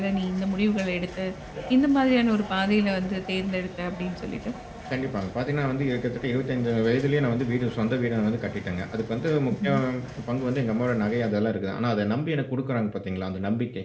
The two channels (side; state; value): both; identical; correlation 1.00